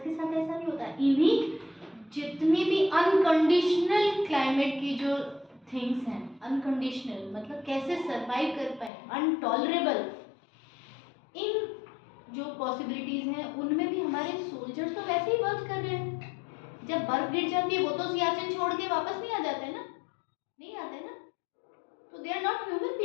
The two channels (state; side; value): drops out; right; at 8.9 s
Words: के साथ ऐसा नहीं होता। इन्हीं जितनी भी अनकंडीशनल क्लाइमेट की जो थिंग्स हैं, अनकंडीशनल मतलब कैसे सरवाइव कर पाए, अनटॉलरेबल, इन जो पॉसिबिलिटीज हैं उनमें भी हमारे सोल्जर्स तो वैसे ही वर्क कर रहे हैं। जब बर्फ गिर जाती है वो तो सियाचिन छोड़ के वापस नहीं आ जाते ना, नहीं आते ना, तो they are not human